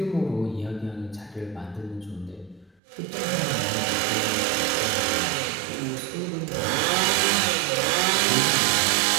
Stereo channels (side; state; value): left; drops out; at 2.8 s